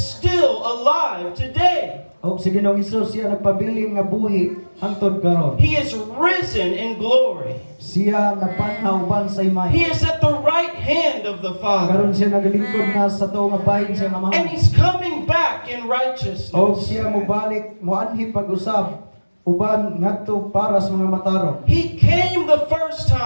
alive today. Og si Ginoong Hesus siya nagpabiling nga buhi hangtod karon. He is risen in glory. Siya napanhaw ban sa imay. He is at the right hand of the Father. Karon siya nagalingkod na sa tuong nga bahin siya nga And mahal. he's coming back in Og righteousness. siya mobalik moanhi pag-usab uban ngadto para sa mga matarong. He came the first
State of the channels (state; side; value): inverted; both; correlation -1.00